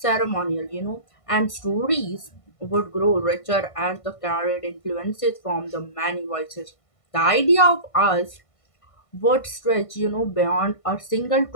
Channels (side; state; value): right; late; 1.5 ms